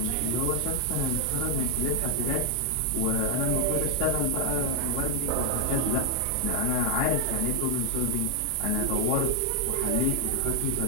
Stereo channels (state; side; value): different; both; correlation 0.00